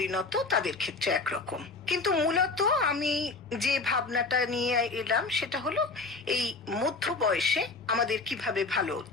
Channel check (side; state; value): right; quieter; 3.8 dB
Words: তাদের ক্ষেত্রে একরকম। কিন্তু মূলত আমি যে ভাবনাটা নিয়ে এলাম সেটা হলো এই মধ্য বয়সে আমাদের কিভাবে ভালো